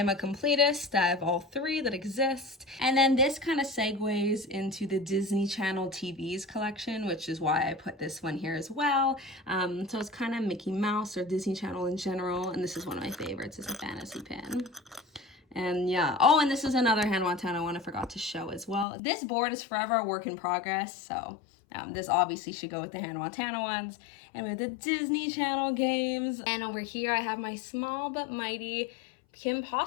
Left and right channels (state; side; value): drops out; right; at 18.9 s